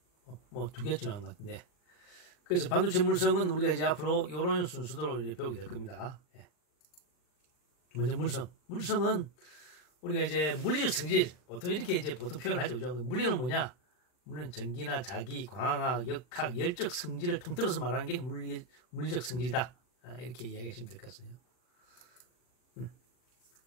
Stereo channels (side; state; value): right; late; 39 ms